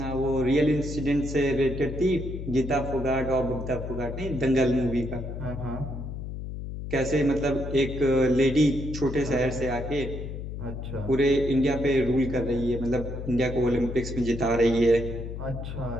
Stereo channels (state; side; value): noise; left; hum, 7 dB below the sound